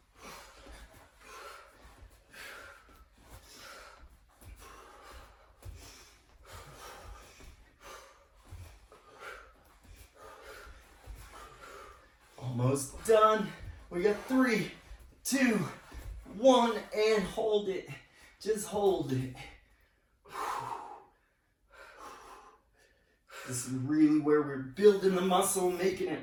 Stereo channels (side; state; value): both; identical; correlation 1.00